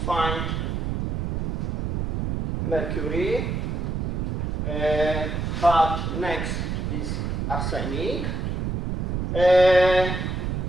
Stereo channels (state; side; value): noise; right; rumble, 2 dB below the sound